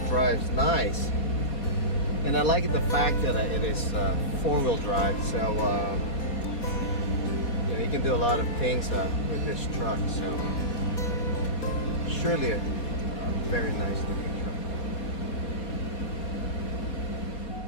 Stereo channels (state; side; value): late; right; 4.3 ms